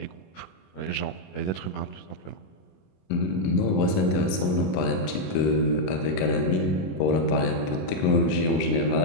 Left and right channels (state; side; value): late; right; 21 ms